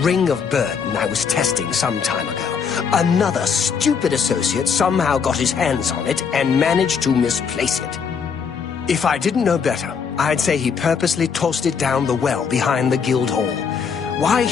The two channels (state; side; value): quieter; right; 6.3 dB